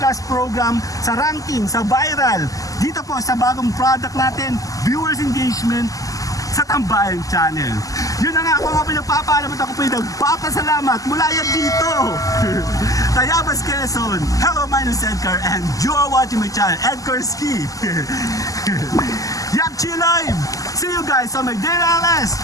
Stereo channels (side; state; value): right; late; 0.17 ms